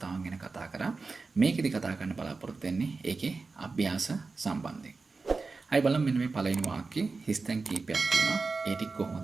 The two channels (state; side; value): quieter; left; 4.1 dB